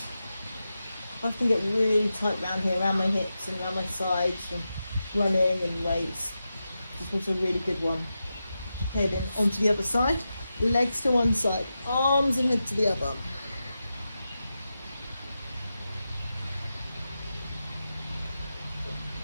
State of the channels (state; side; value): inverted; both; correlation -0.91